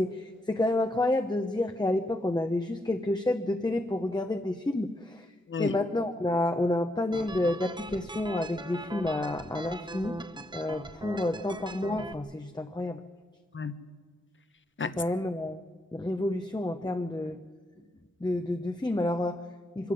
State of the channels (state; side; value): normal; both; correlation 0.79